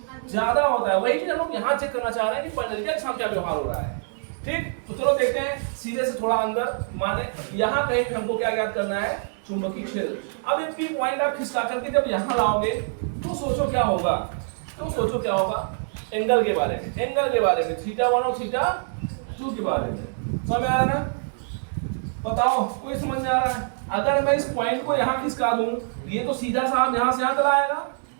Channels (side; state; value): left; silent; digital silence